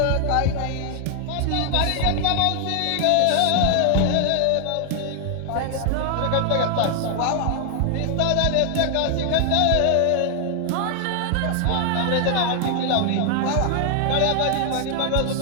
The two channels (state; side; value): different; both; correlation 0.00